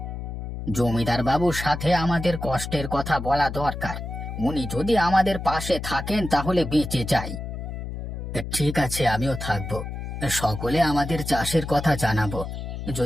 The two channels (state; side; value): noise; left; hum, 7 dB below the sound